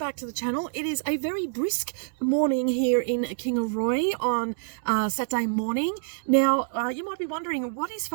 to the channel. It is a very brisk morning here in Kingaroy on Saturday morning. Now, you might be wondering, what is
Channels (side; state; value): left; silent; digital silence